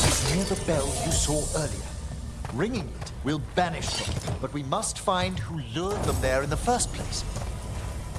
is near the bell you saw earlier. Ringing it will banish them, but we must find who lured them there in the first place.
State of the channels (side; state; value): both; identical; correlation 1.00